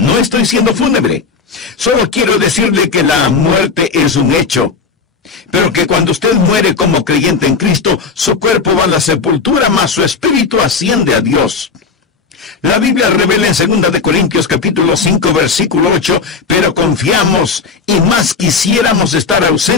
estoy siendo fúnebre. Solo quiero decirle que la muerte es un hecho, pero que cuando usted muere como creyente en Cristo, su cuerpo va a la sepultura, mas su espíritu asciende a Dios. La Biblia revela en 2 de Corintios capítulo 5 versículo 8, pero confiamos y más quisiéramos estar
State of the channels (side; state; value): right; quieter; 5.0 dB